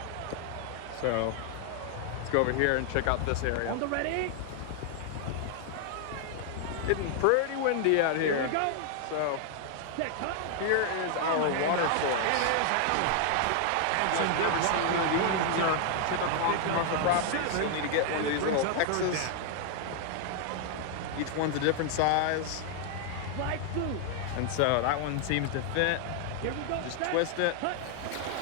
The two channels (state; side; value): different; both; correlation 0.00